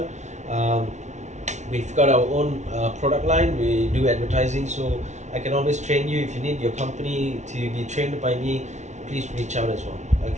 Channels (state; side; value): late; left; 0.33 ms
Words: We've got our own product line. We do advertising, so I can always train you. If you need your company to be trained by me, please reach out as well.